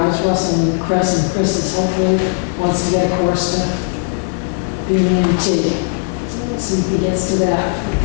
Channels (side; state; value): right; silent; 58 dB below the other